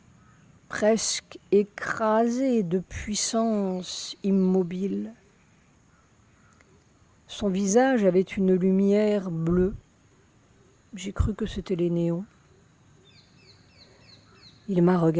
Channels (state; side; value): identical; both; correlation 1.00